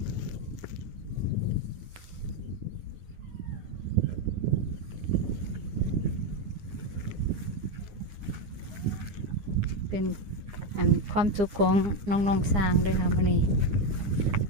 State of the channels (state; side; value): late; left; 9.8 ms